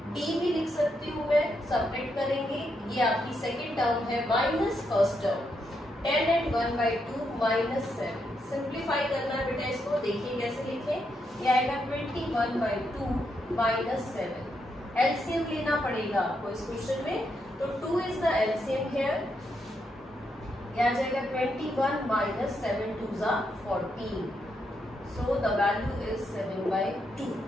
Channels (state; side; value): normal; both; correlation 0.80